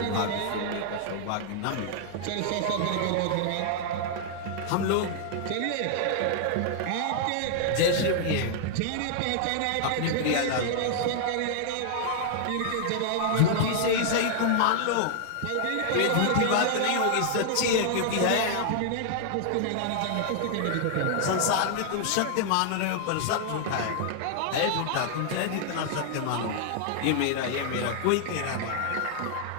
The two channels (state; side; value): different; both; correlation 0.00